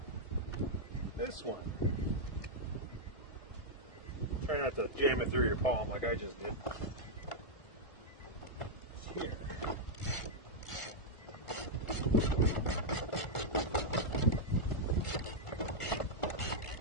This one. Try not to jam it through your palm like I just did. It's here.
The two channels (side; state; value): right; late; 1.5 ms